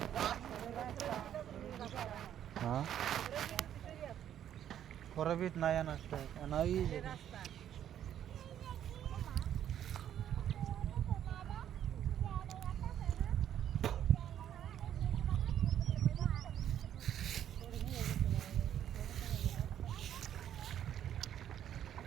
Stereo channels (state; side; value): quieter; left; 10.4 dB